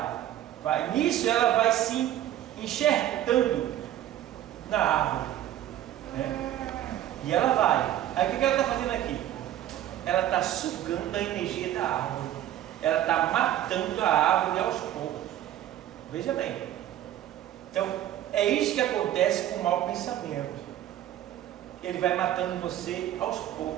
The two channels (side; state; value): left; quieter; 12.3 dB